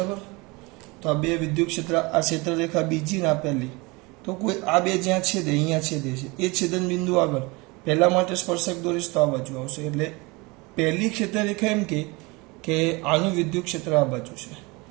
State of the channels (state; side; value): quieter; left; 25.5 dB